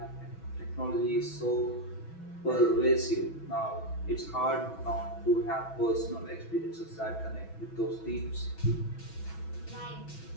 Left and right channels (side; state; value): right; late; 6.1 ms